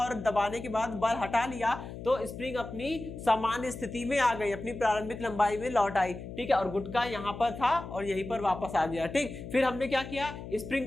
दबाने के बाद बल हटा लिया तो स्प्रिंग अपनी सामान्य स्थिति में आ गई, अपनी प्रारंभिक लंबाई में लौट आई। ठीक है, और गुटका यहाँ पर था और यहीं पर वापस आ गया। ठीक, फिर हमने क्या किया,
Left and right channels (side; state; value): left; noise; hum, 11 dB below the sound